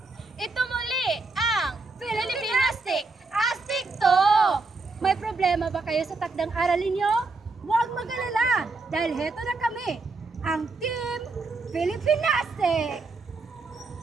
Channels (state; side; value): quieter; left; 3.8 dB